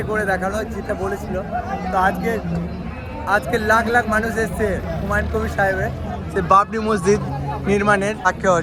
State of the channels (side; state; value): both; identical; correlation 1.00